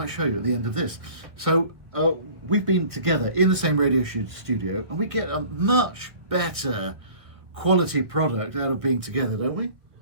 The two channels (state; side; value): late; left; 1.6 ms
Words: show you at the end of this. So we've been together in the same radio studio, and we get a much better quality product out of being together, don't we?